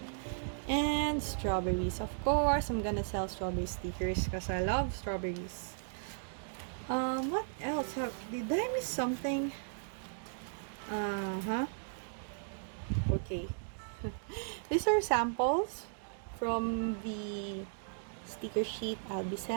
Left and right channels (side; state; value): left; silent; digital silence